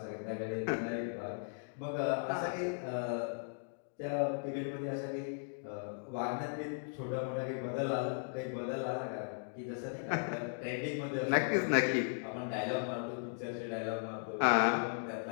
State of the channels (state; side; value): silent; right; digital silence